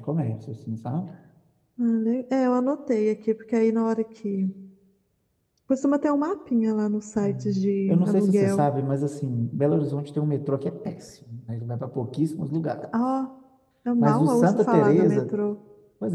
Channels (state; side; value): identical; both; correlation 1.00